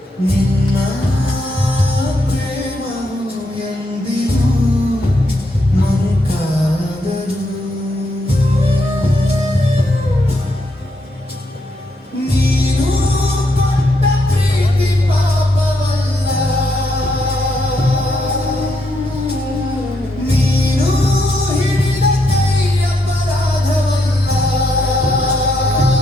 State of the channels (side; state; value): both; normal; correlation 0.78